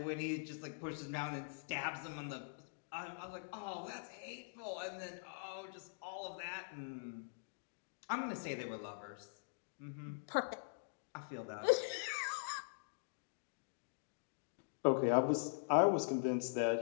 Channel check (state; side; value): silent; right; digital silence